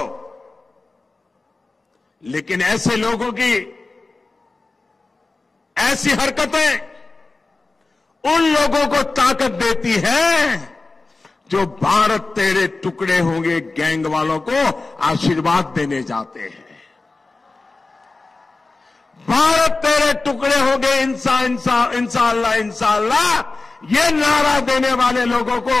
लेकिन ऐसे लोगों की ऐसी हरकतें उन लोगों को ताकत देती है जो भारत तेरे टुकड़े होंगे गैंग वालों को आशीर्वाद देने जाते हैं। भारत तेरे टुकड़े होंगे इंशाअल्लाह इंशाअल्लाह, ये नारा देने वाले लोगों को,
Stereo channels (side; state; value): right; quieter; 3.5 dB